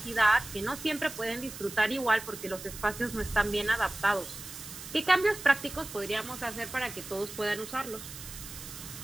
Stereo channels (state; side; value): noise; right; hiss, 12 dB below the sound